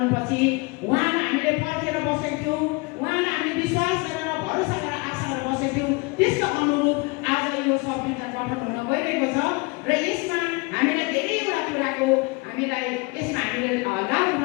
उहाँलाई हामीले पर्खेर बसेको थियौँ, उहाँलाई हामीले विश्वास गरेर भरोसा गरेर आशा गरेर बसेको थियौँ, त्यसको अनुरूप आज यो संविधान गठन हुन गइरहेको छ। र यसमा हामीलाई धेरैवटा कुराको हामीलाई यसमा हामीले लाभ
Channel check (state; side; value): quieter; right; 27.1 dB